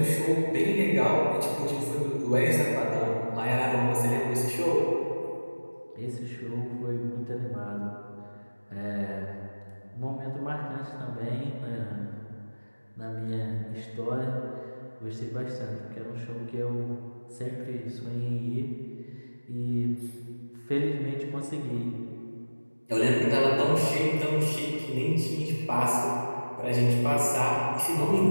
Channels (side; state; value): both; inverted; correlation -1.00